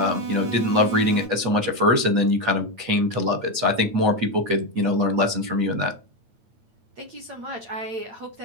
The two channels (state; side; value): late; left; 8.9 ms